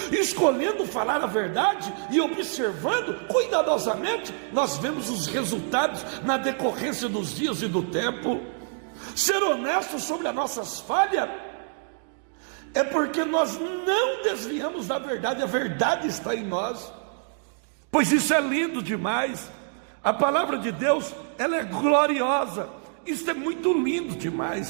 Escolhendo falar a verdade e observando cuidadosamente, nós vemos os resultados na decorrência dos dias e do tempo. Ser honesto sobre as nossas falhas é porque nós não desviamos da verdade, a verdade está em nós. Pois isso é lindo demais. A palavra de Deus, ela é gloriosa. Isso é muito lindo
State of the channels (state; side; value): silent; left; 59 dB below the other